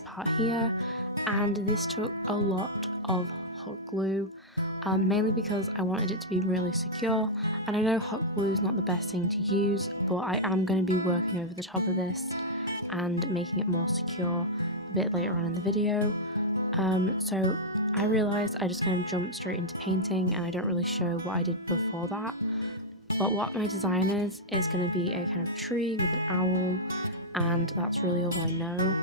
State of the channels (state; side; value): normal; both; correlation -0.07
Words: part here, and this took a lot of hot glue, mainly because I wanted it to be really secure, and I know hot glue is not the best thing to use, but I am going to be working over the top of this and making it more secure a bit later on in the video. So I realised I just kind of jumped straight into painting and I don't really show what I did before that, but what my design is going to be a kind of tree with an owl, and that's really all I know.